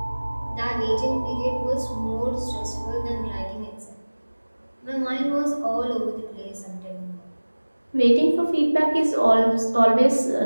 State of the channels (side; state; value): both; inverted; correlation -1.00